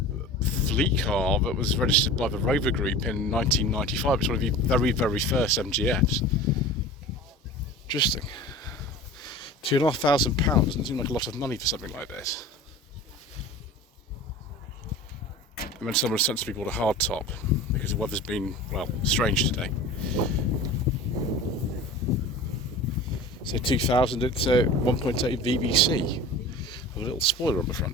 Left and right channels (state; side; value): normal; both; correlation 0.37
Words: fleet car that was registered by the Rover Group in 1995. It's one of the very, very first MGFs. Interesting. £2,500 doesn't seem like a lot of money for something like this. And then someone sensibly bought a hard top because the weather's been, well, strange today. So 2000, it's a 1.8 VVC with a little spoiler on the